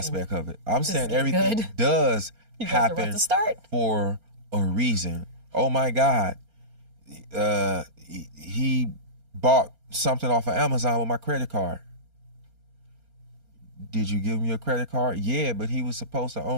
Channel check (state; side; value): late; left; 4.3 ms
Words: of it. I'm saying getting everything good. does You guys are about happen to start. for a reason. Oh my God, he bought something off of Amazon with my credit card. Did you give me a credit card? Yeah, but he was supposed to